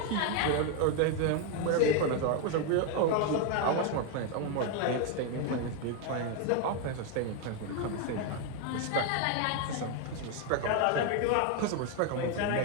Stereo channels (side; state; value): both; different; correlation 0.01